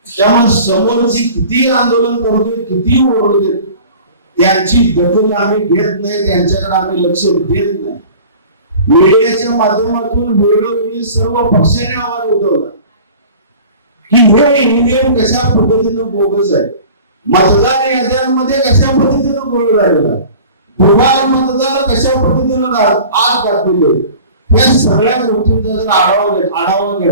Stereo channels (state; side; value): inverted; both; correlation -0.43